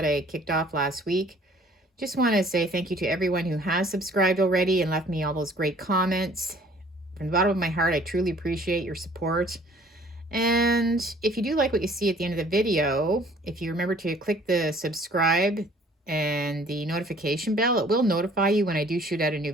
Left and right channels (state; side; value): normal; both; correlation 0.55